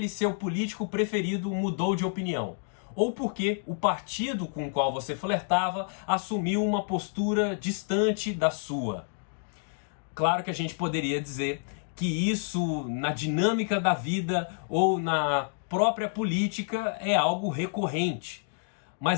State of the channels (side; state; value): right; silent; 59 dB below the other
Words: seu político preferido mudou de opinião, ou por que o partido com o qual você flertava assumiu uma postura distante da sua. Claro que a gente poderia dizer que isso, na dinâmica da vida ou na própria política, é algo recorrente.